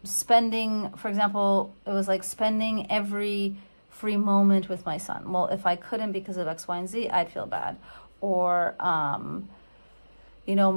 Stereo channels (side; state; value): both; inverted; correlation -1.00